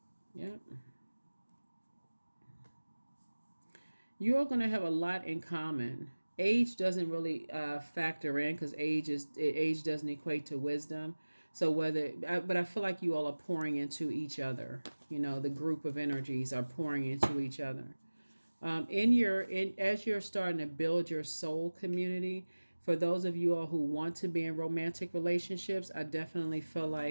Yep. You're going to have a lot in common. Age doesn't really factor in because age doesn't equate to wisdom. So but I feel like you all are pouring into each other. You know, the group of energies are pouring into each other. As you're starting to build your soul community, for those of you all who want to be in romantic relationships, I definitely feel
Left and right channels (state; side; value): inverted; both; correlation -1.00